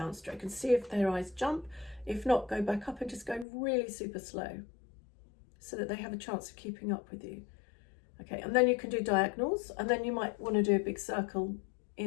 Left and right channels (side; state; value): right; drops out; at 3.5 s